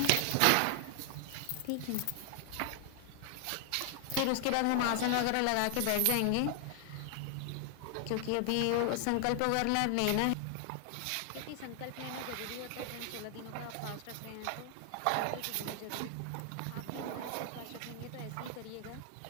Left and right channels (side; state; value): both; different; correlation 0.00